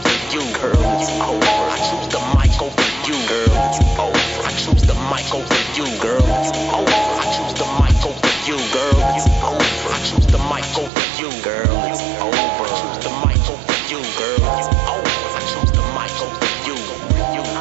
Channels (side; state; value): left; drops out; at 10.9 s